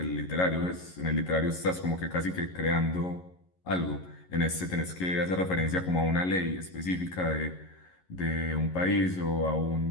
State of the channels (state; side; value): late; right; 11 ms